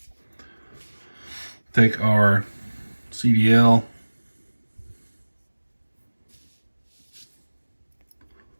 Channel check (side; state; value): both; inverted; correlation -1.00